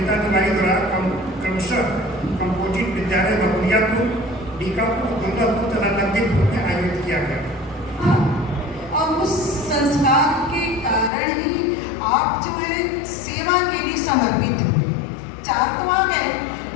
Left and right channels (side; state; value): right; drops out; at 11.1 s